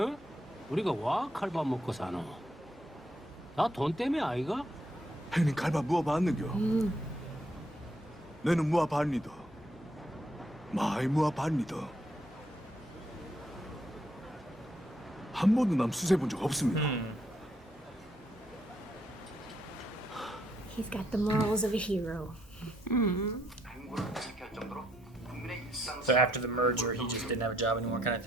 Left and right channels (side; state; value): both; normal; correlation 0.73